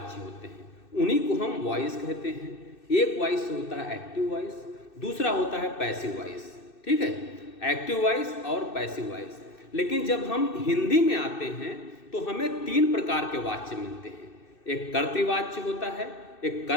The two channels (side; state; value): right; late; 2.6 ms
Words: होते हैं, उन्हीं को हम वॉइस कहते हैं। एक वॉइस होता है एक्टिव वॉइस, दूसरा होता है पैसिव वॉइस। ठीक है, एक्टिव वॉइस और पैसिव वॉइस। लेकिन जब हम हिंदी में आते हैं तो हमें 3 प्रकार के वाच्य मिलते हैं। एक कर्तृवाच्य होता है, एक